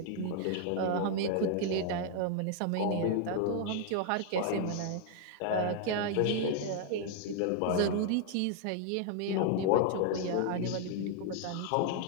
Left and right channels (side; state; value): both; different; correlation 0.00